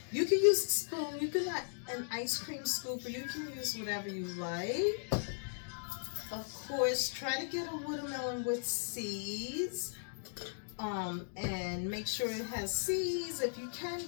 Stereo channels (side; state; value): right; silent; digital silence